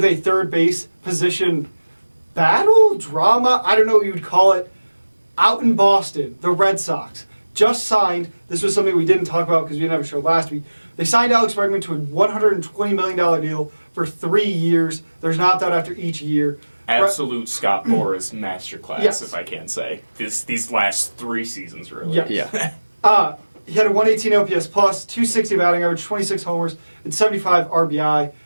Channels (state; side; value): inverted; both; correlation -1.00